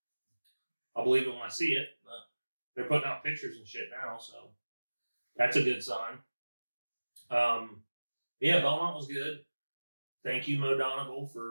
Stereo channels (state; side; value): inverted; both; correlation -1.00